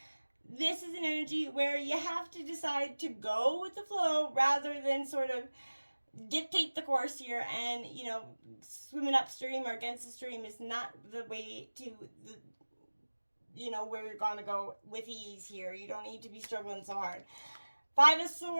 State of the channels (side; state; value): both; inverted; correlation -1.00